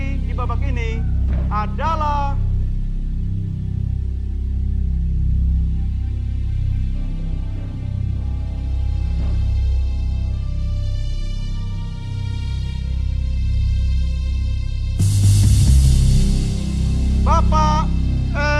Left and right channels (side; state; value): both; identical; correlation 1.00